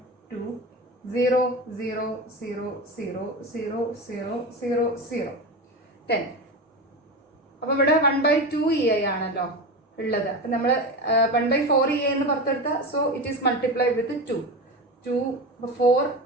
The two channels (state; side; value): normal; both; correlation 0.23